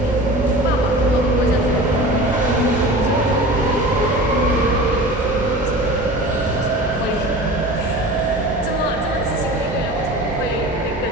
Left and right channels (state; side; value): normal; both; correlation 0.36